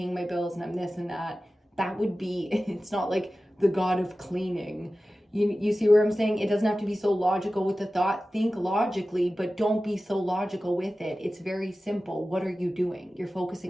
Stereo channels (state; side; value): normal; both; correlation 0.95